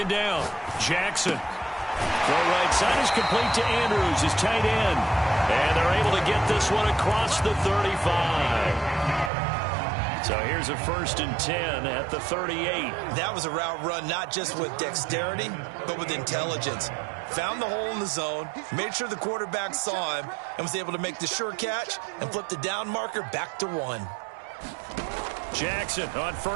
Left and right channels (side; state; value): left; drops out; at 9.3 s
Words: down. Jackson. Throw right side is complete to Andrews, his tight end. And they're able to get this one across the 35. So here's a 1st and 10 at the 38. That was a route run not just with dexterity, but with intelligence. Found the hole in the zone, made sure the quarterback saw him, and was able to make the sure catch and flip the down marker back to 1. Jackson on